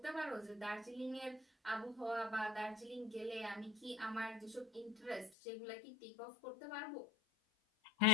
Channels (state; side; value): drops out; right; at 5.3 s